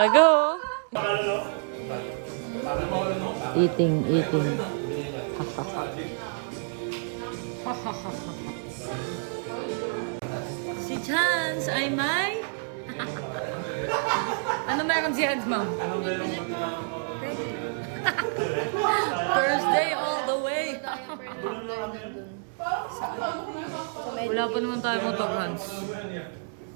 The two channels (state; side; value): silent; left; digital silence